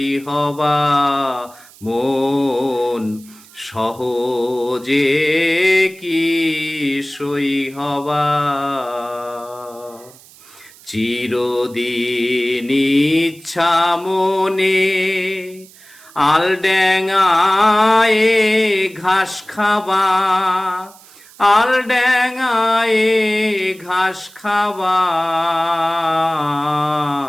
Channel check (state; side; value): noise; right; hiss, 23 dB below the sound